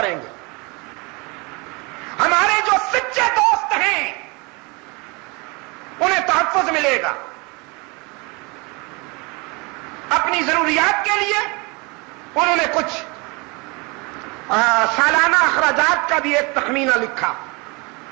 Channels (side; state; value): left; quieter; 28.1 dB